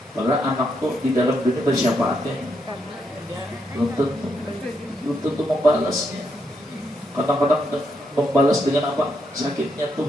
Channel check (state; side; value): normal; both; correlation 0.79